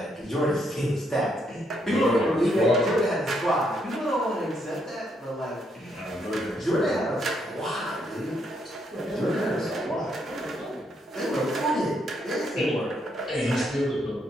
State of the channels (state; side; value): normal; both; correlation 0.75